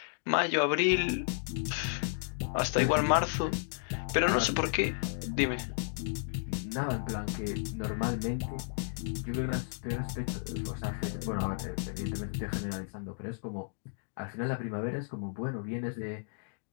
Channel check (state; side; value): silent; right; digital silence